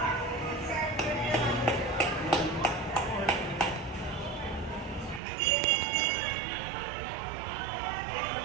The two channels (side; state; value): left; drops out; at 5.2 s